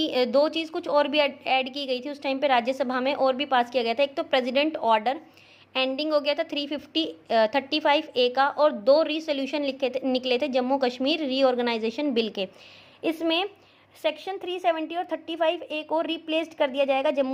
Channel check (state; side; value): identical; both; correlation 1.00